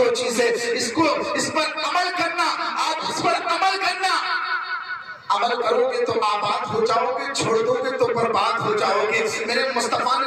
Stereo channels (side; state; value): both; identical; correlation 1.00